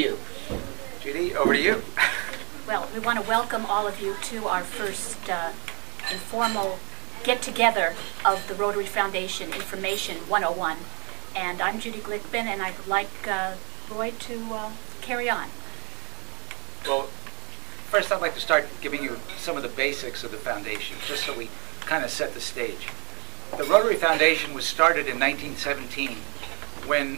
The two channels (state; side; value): quieter; left; 31.7 dB